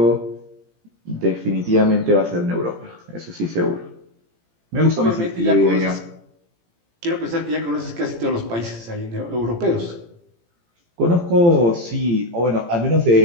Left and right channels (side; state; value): left; late; 17 ms